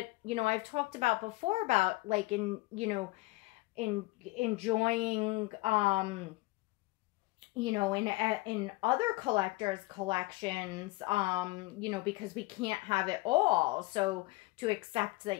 you know, I've talked about before about, like, enjoying, you know, in other collectors' collections, you know, because we can't have it all. So to accept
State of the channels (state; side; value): quieter; right; 22.3 dB